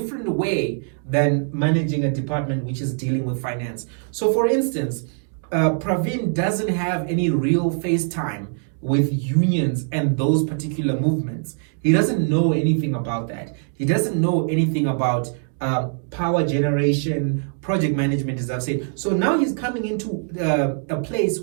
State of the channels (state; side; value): silent; left; 57 dB below the other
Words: way than managing a department which is dealing with finance. So, for instance, Pravin doesn't have any real face time with unions and those particular movements. He doesn't know anything about that. He doesn't know anything about power generation, project management, as I've said. So now he's coming into a place